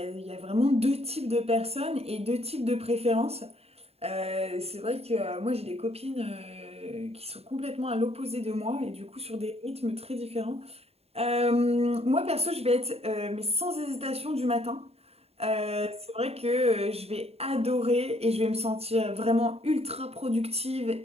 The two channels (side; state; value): left; late; 0.29 ms